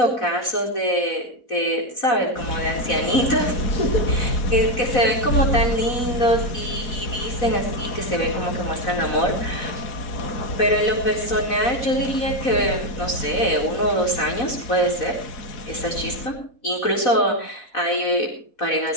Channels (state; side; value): late; right; 4.1 ms